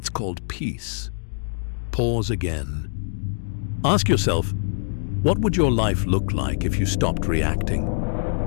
called peace. Pause again. Ask yourself, what would your life look like if you stopped reacting?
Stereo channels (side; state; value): right; silent; digital silence